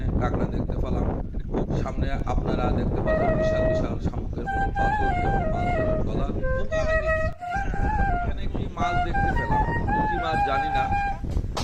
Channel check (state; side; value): identical; both; correlation 1.00